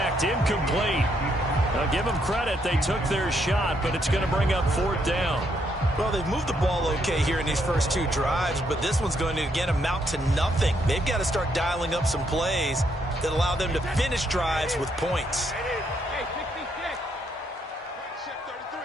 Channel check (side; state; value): both; normal; correlation 0.74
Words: Incomplete. Now give them credit. They took their shot, but it's going to bring up 4th down. Well, they've moved the ball okay here in these first 2 drives, but this one's going to, again, amount to nothing. They've got to start dialing up some plays that allow them to finish drives with points.